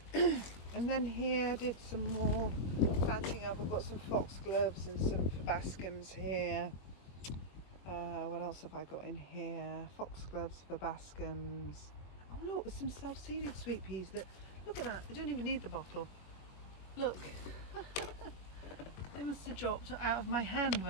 And then here I did some more planting up. I've got some foxgloves and some verbascums here. What else have I got in here? Foxgloves, verbascums. Oh look, there's some self-seeded sweet peas that, look at that, they don't even need the bottle. Look. They must have dropped out of my hand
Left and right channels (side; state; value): right; late; 21 ms